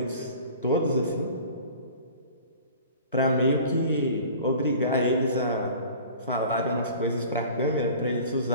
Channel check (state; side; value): inverted; both; correlation -0.44